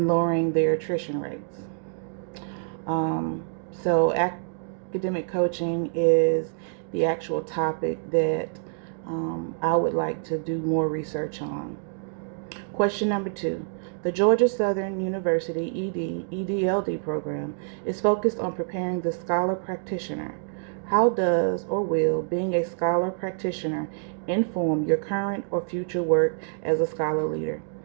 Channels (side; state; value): left; silent; digital silence